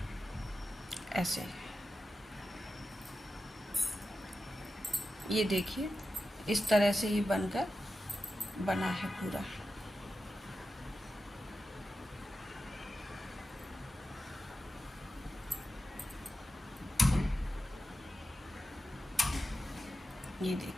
ऐसे ये देखिए इस तरह से ये बनकर बना है पूरा। ये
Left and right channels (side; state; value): both; normal; correlation 0.91